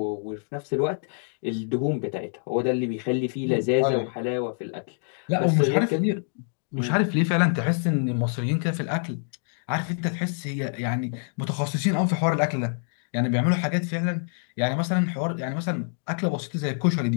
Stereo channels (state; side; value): silent; right; 61 dB below the other